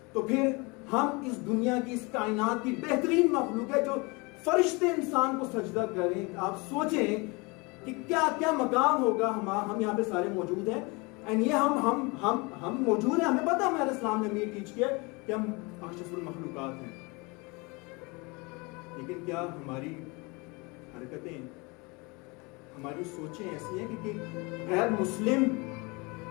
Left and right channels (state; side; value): quieter; right; 27.5 dB